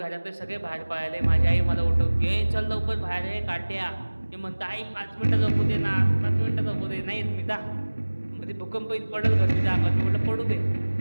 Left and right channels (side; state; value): both; inverted; correlation -1.00